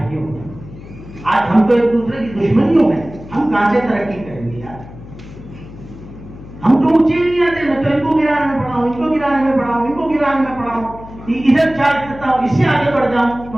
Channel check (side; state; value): left; noise; hum, 16 dB below the sound